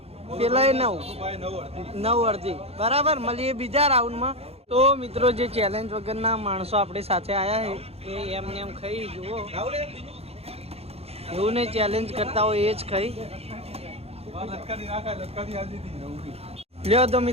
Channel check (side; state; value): left; late; 0.29 ms